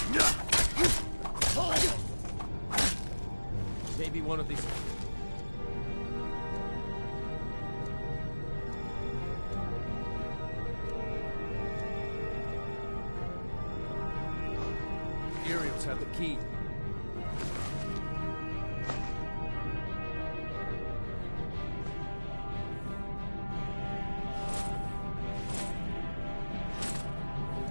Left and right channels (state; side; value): inverted; both; correlation -1.00